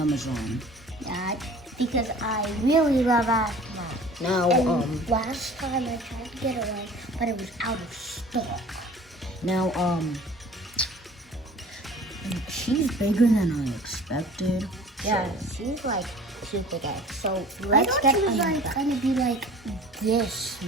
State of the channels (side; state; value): both; normal; correlation 0.45